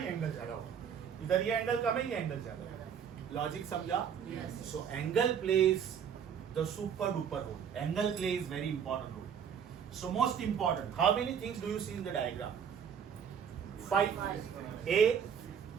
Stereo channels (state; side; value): quieter; left; 7.7 dB